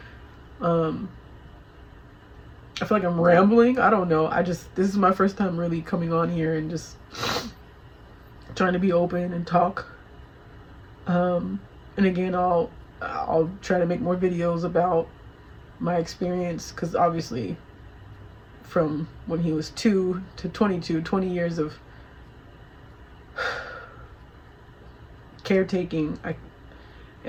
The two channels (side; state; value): both; identical; correlation 1.00